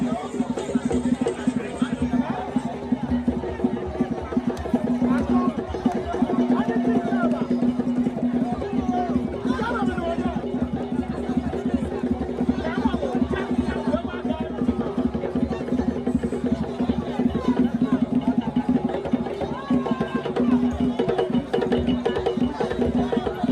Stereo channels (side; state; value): both; identical; correlation 1.00